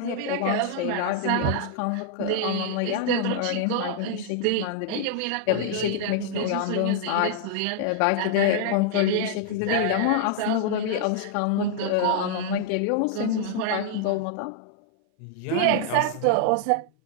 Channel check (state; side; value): different; both; correlation -0.01